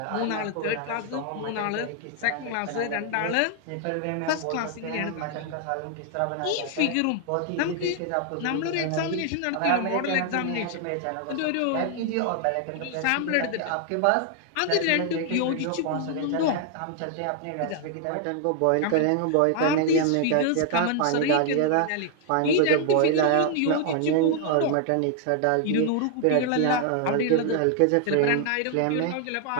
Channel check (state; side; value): different; both; correlation 0.00